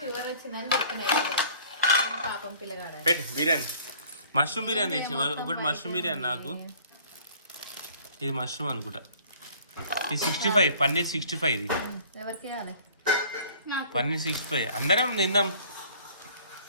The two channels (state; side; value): inverted; both; correlation -0.53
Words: వచ్చిందని చెప్పిన. పాపం పిల్లగాడ. పెట్టు బిర్యానీ. మష్రూమ్ బిర్యానీ తెచ్చి ఒకటి. మష్రూమ్ బిర్యానీ నాకు. ఇది మష్రూమ్ అనుకుంటా. ఇది 65, పన్నీర్ 65. ఇది ఎవరికి పన్నీర్ 65. అందరం తిందాం.